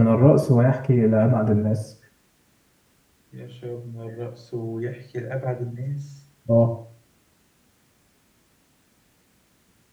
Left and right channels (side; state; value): both; identical; correlation 1.00